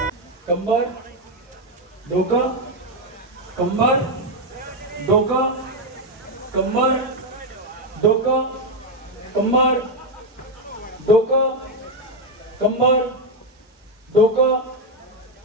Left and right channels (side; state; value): both; normal; correlation 0.04